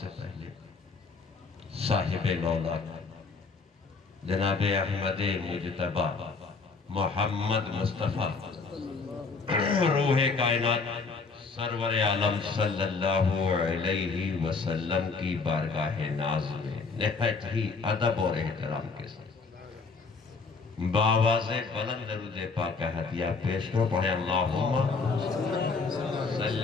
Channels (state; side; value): quieter; right; 4.5 dB